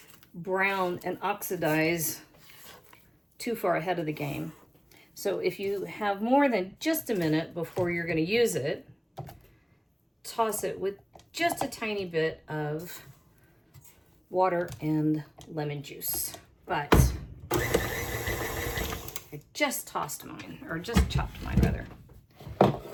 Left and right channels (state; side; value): identical; both; correlation 1.00